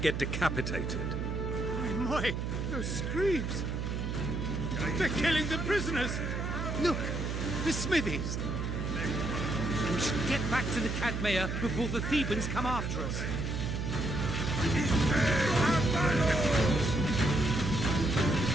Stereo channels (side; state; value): right; noise; hum, 2 dB below the sound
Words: decapitated. My, those screams! They're killing the prisoners! Look, the smithies! We should get back to the Cadmea before the Thebans come after us.